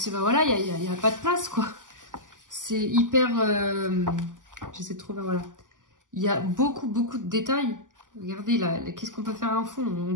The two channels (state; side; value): late; left; 0.88 ms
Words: que bah, voilà, il n'y a pas de place, quoi. C'est hyper... J'essaie de trouver, voilà. Il y a beaucoup de détails. Regardez, là, qu'est-ce qu'on peut faire un fond?